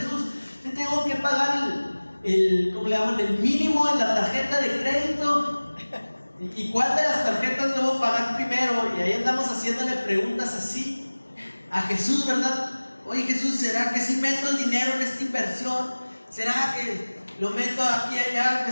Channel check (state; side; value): inverted; both; correlation -1.00